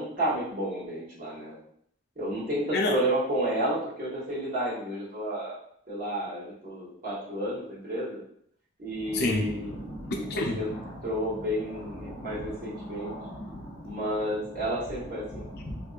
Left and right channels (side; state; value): both; normal; correlation 0.27